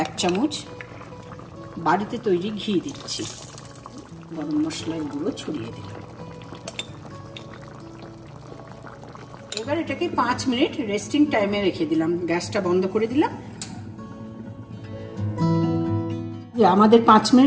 1 চামচ বাড়িতে তৈরি ঘি দিচ্ছি, গরম মশলার গুঁড়ো ছড়িয়ে দিলাম। এবার এটাকে 5 মিনিট রেস্টিং টাইমে রেখে দিলাম, গ্যাসটা বন্ধ করে দিলাম। আমাদের 5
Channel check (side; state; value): both; identical; correlation 1.00